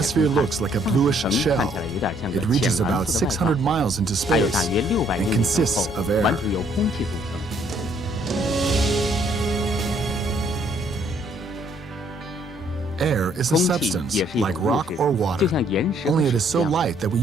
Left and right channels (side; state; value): both; normal; correlation 0.66